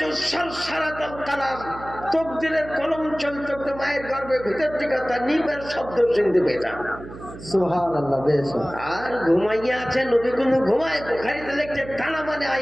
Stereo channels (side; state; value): right; noise; hum, 14 dB below the sound